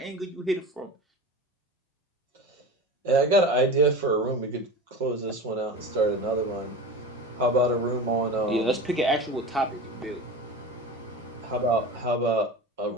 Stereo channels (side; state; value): both; normal; correlation 0.30